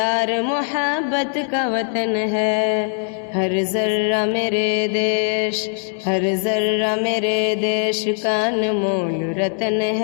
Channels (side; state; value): right; silent; 58 dB below the other